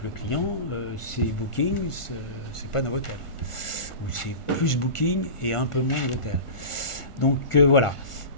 le client, c'est Booking, c'est pas Novotel. Ou c'est plus Booking et un peu moins Novotel. Donc voilà.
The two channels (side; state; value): right; late; 1.5 ms